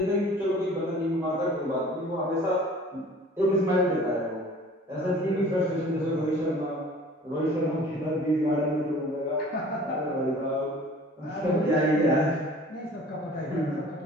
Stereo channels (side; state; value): both; normal; correlation 0.47